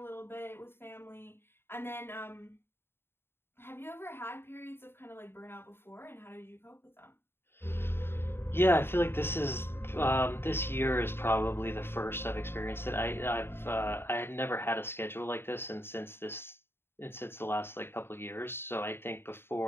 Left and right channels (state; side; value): late; right; 0.11 ms